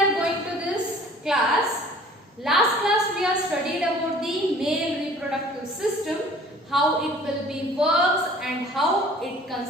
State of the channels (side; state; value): both; normal; correlation 0.50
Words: going to this class, last class we have studied about the male reproductive system, how it will be works and how it